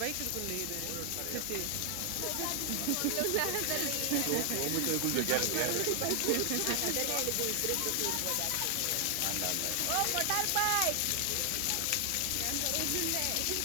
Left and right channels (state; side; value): different; both; correlation 0.00